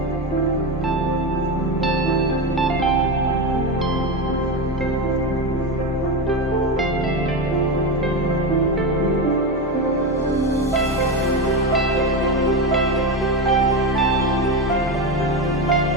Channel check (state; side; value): normal; both; correlation 0.17